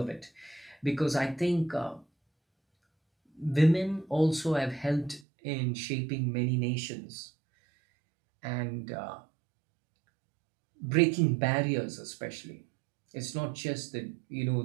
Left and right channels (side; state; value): left; drops out; at 5.2 s